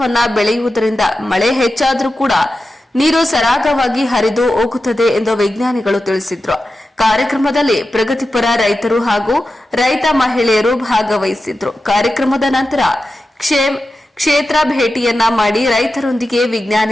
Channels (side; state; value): both; normal; correlation 0.92